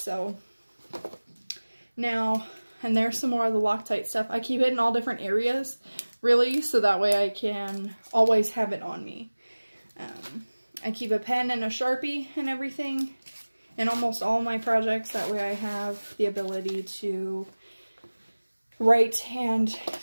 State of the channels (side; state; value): both; inverted; correlation -1.00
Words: now, and there's some more of the Loctite stuff. I keep it in all different areas, really, so that way I can always have it on me. I keep a pen and a Sharpie and everything in almost all my projects. That way I have the ability to write and